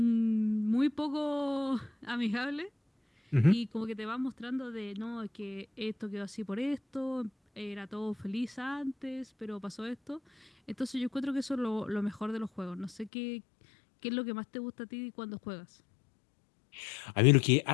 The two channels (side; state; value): right; drops out; at 13.1 s